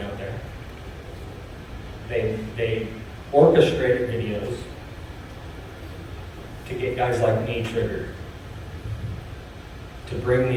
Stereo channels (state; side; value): identical; both; correlation 1.00